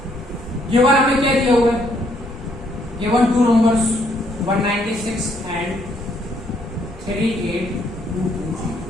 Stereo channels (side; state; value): both; normal; correlation 0.70